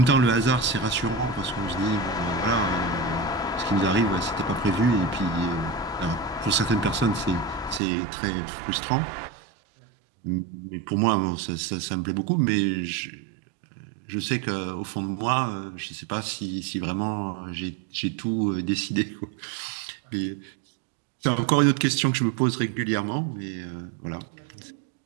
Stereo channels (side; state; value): left; drops out; at 7.8 s